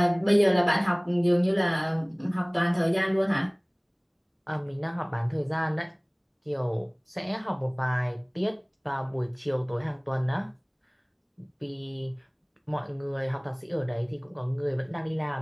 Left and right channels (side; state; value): both; identical; correlation 1.00